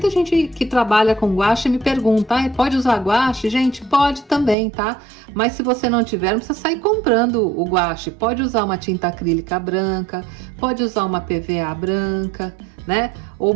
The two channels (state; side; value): drops out; left; at 4.5 s